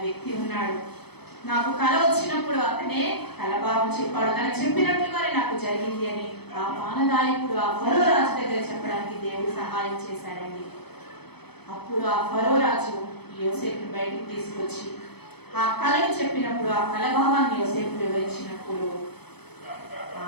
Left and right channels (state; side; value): late; right; 0.98 ms